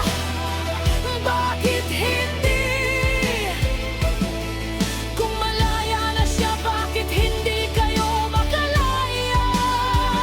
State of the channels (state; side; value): identical; both; correlation 1.00